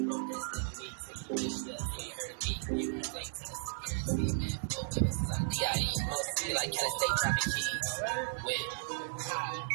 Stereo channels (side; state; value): left; silent; 54 dB below the other